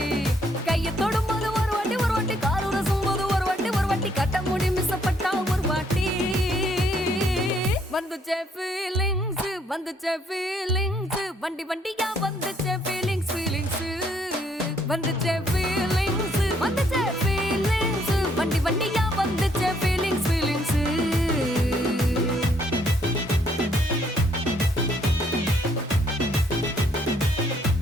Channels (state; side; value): normal; both; correlation 0.68